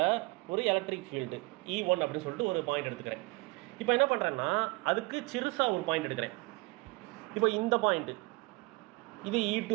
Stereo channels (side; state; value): left; quieter; 25.1 dB